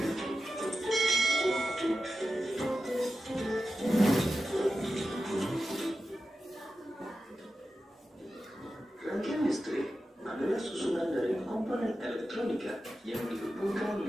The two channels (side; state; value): both; normal; correlation 0.91